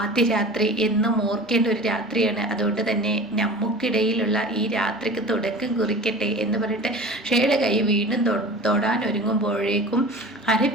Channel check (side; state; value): both; normal; correlation 0.37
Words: രാത്രി എന്നും ഓർക്കേണ്ട ഒരു രാത്രിയാണ്. അതുകൊണ്ട് തന്നെ നമുക്കിടയിലുള്ള ഈ രാത്രിക്ക് തുടക്കം കുറിക്കട്ടെ എന്ന് പറഞ്ഞിട്ട് ഷേയുടെ കൈ വീണ്ടും തൊടാൻ ഒരുങ്ങുമ്പോഴേക്കും